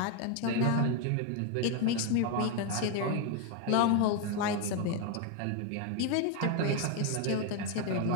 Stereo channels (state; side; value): different; both; correlation 0.01